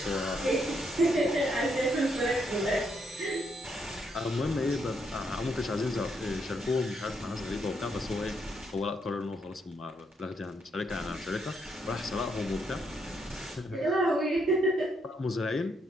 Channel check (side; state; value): both; normal; correlation 0.76